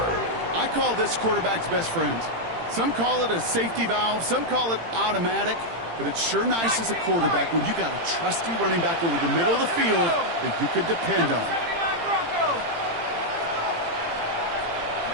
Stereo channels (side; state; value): left; late; 18 ms